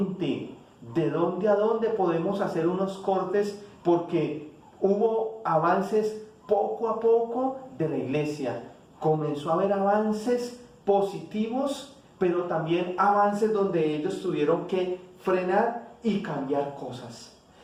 ¿De dónde a dónde podemos hacer unos cortes? Porque hubo avances poco a poco de la iglesia. Comenzó a haber avances positivos, pero también avances donde ellos tuvieron que frenar y cambiar cosas.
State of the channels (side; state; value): both; identical; correlation 1.00